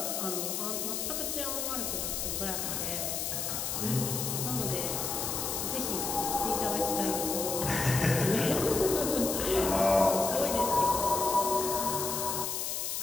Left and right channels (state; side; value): noise; left; hiss, 2 dB below the sound